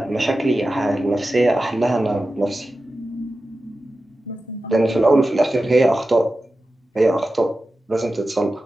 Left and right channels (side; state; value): both; normal; correlation 0.93